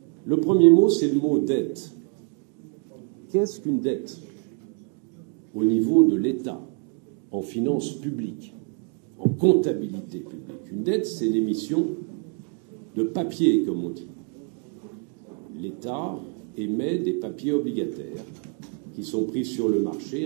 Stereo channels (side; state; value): left; quieter; 35.0 dB